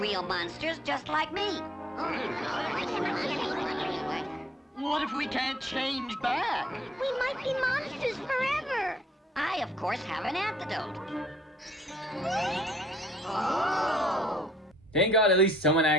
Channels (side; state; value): both; normal; correlation 0.63